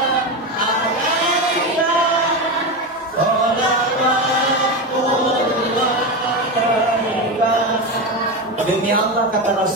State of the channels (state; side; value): normal; both; correlation 0.17